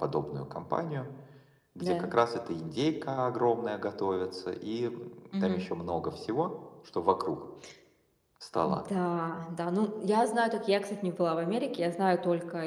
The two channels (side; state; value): both; identical; correlation 1.00